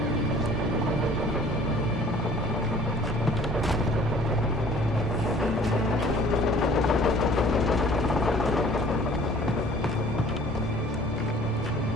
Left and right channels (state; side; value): normal; both; correlation 0.52